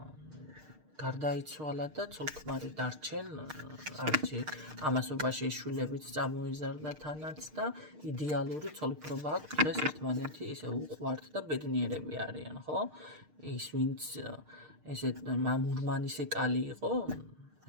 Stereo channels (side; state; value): left; late; 6.6 ms